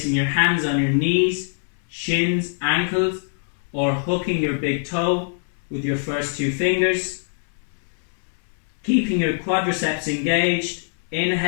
your hands on your knees, shins, ankles, or hooking your big toe with your first two fingers. Keeping your quadriceps engaged.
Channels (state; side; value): silent; right; digital silence